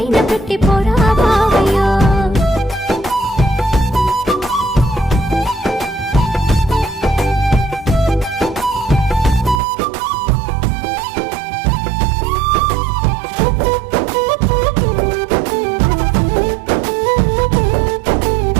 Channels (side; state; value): left; drops out; at 9.6 s